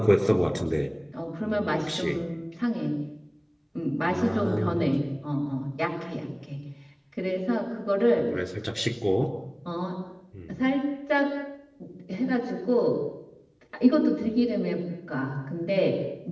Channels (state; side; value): identical; both; correlation 1.00